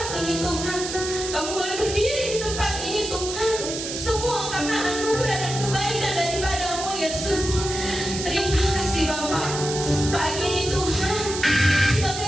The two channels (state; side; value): noise; right; hiss, 6 dB below the sound